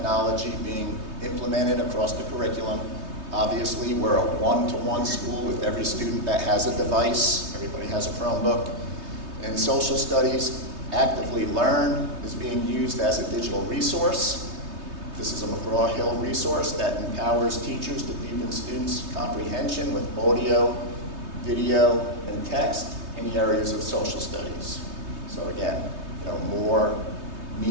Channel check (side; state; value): left; late; 3.2 ms